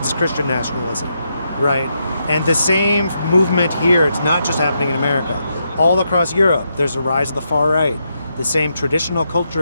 as Christian nationalism, right? And the same movement here, it's not just happening in America. All across Europe, there's a rise of the far right. The same traditional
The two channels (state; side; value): inverted; both; correlation -0.82